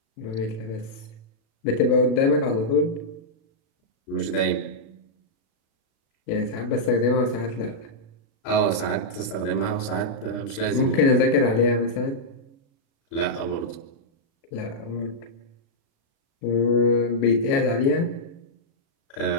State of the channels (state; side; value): late; right; 36 ms